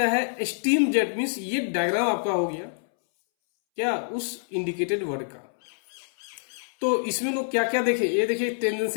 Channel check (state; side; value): silent; right; 61 dB below the other